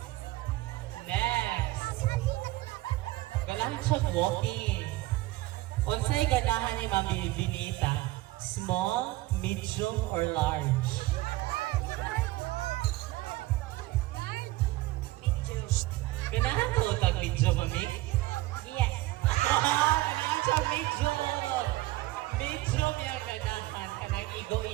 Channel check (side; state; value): left; quieter; 18.3 dB